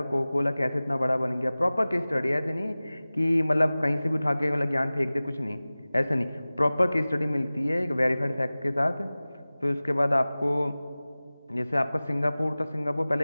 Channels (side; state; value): both; inverted; correlation -0.98